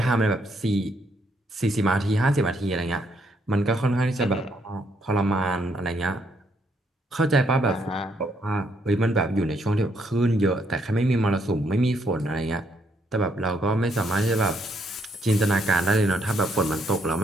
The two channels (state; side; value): normal; both; correlation 0.73